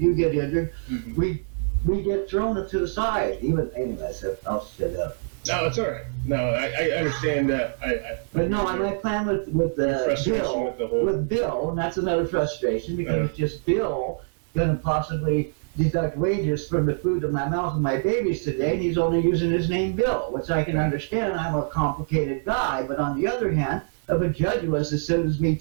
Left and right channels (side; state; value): left; silent; digital silence